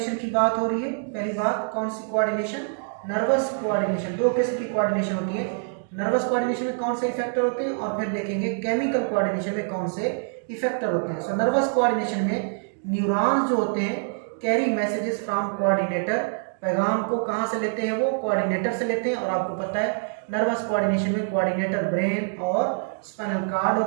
की बात हो रही है। पहली बात, कौन सी कोऑर्डिनेशन? Nervous coordination. दो किस्म की कोऑर्डिनेशन होती है। नर्वस कोऑर्डिनेशन में कौन से इफेक्टर होते हैं और फिर देखेंगे केमिकल कोऑर्डिनेशन में कौन से इफेक्टर होते हैं। सो नर्वस कोऑर्डिनेशन में न्यूरॉन्स जो होते हैं कैरी मैसेजेस फ्रॉम कोऑर्डिनेटर, पैगाम को कहाँ से लेते हैं? वो कोऑर्डिनेटर से लेते हैं। और आपको पता है नर्वस कोऑर्डिनेशन में कोऑर्डिनेटर ब्रेन और स्पाइनल कार्ड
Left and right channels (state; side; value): silent; left; digital silence